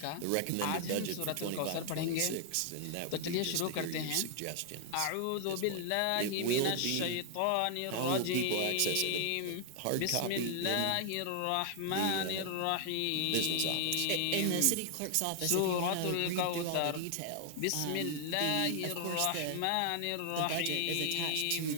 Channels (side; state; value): both; different; correlation 0.00